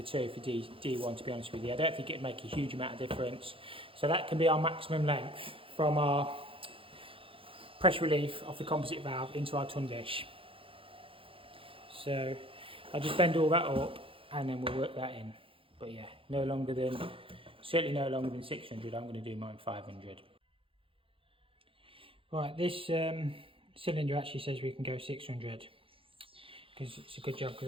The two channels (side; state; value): left; late; 0.26 ms